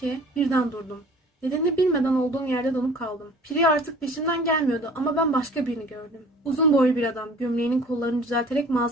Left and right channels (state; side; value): normal; both; correlation 0.48